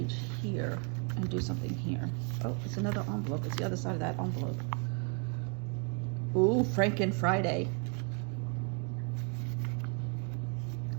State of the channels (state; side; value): quieter; left; 39.4 dB